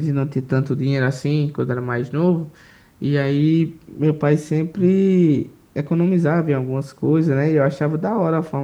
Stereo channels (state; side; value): identical; both; correlation 1.00